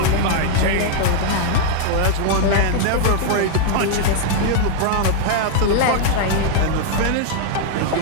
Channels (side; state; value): both; different; correlation 0.00